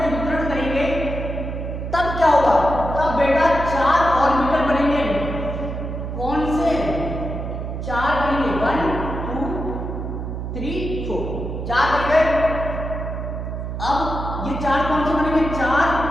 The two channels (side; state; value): right; noise; hum, 5 dB below the sound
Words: वितरण करेंगे तब क्या होगा, तब बेटा 4 ऑर्बिटल बनेंगे। कौन से 4 बनेंगे, 1 2 3 4, 4 बन गए। अब ये 4 कौन से बनेंगे, 4